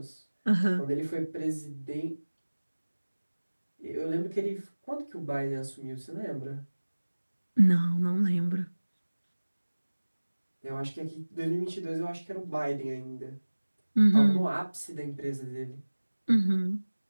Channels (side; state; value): both; inverted; correlation -1.00